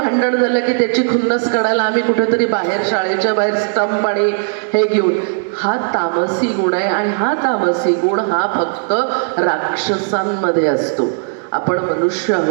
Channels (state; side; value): silent; left; digital silence